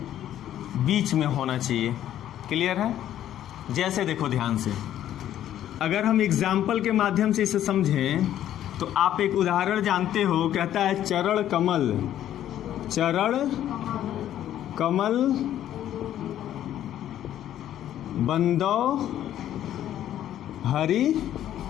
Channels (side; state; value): right; quieter; 11.6 dB